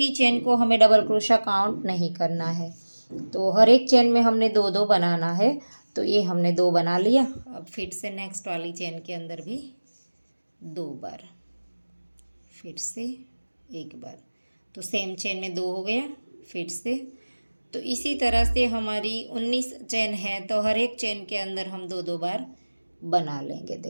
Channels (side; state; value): both; inverted; correlation -1.00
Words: चेन को हमें डबल क्रोशिया काउंट नहीं करना है। तो हर एक चेन में हमने 2 2 बनाना है। तो ये हमने 2 बना लिया। अब फिर से नेक्स्ट वाली चेन के अंदर भी 2 बार, फिर से एक बार। तो सेम चेन में 2 हो गया, फिर से। तो इसी तरह से हमारी 19 चेन है तो हर एक चेन के अंदर हम 2 2 बार बना लेंगे।